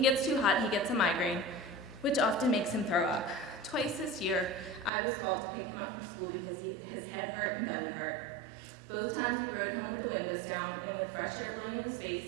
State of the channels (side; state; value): left; drops out; at 4.9 s